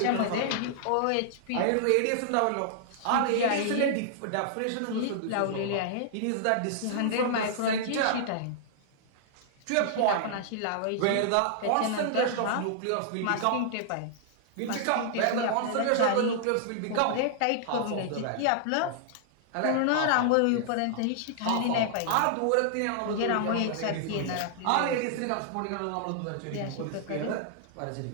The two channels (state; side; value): different; both; correlation -0.01